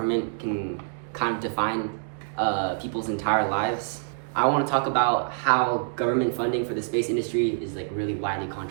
can kind of define people's entire lives, I want to talk about how government funding for the space industry is like really widely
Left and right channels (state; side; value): silent; left; digital silence